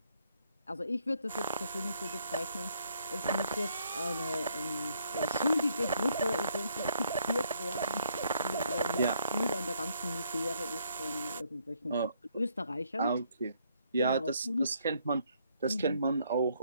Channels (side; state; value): both; inverted; correlation -0.70